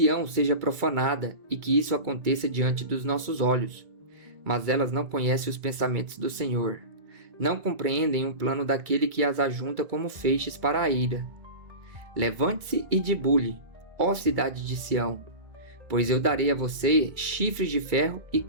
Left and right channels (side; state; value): left; late; 2.2 ms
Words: seja profanada e que isso aconteça diante dos nossos olhos. Mas elas não conhecem os pensamentos do Senhor. Não compreendem o plano daquele que as ajunta como feixes para a ira. Levante-se e debulhe, ó cidade de Sião, pois eu darei a você chifres de ferro e